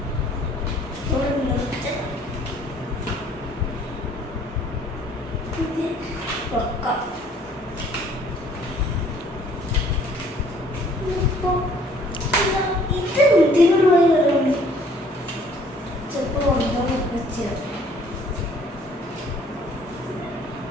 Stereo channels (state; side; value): normal; both; correlation 0.58